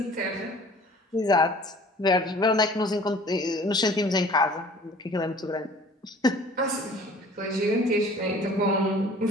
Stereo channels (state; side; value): normal; both; correlation 0.49